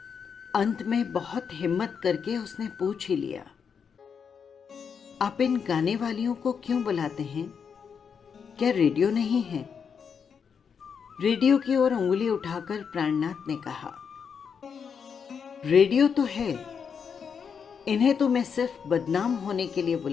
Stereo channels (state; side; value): quieter; right; 6.6 dB